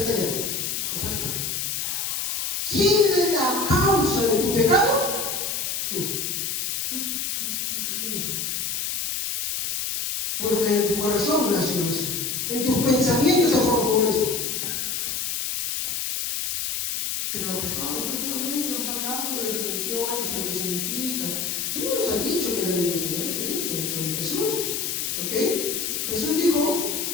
allá. Es Sancho. ¿Quién es la causa de tu pecado? Tú. Porque en tu corazón nació eso. En tus pensamientos se forjó eso. Pero pues no, usted solamente nos ha hablado de definiciones y lo que significa. Usted no nos ha dicho que la Biblia es, ya les he dicho sobre Jesús. ¿Ok? Jesús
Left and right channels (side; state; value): left; noise; hiss, 1 dB below the sound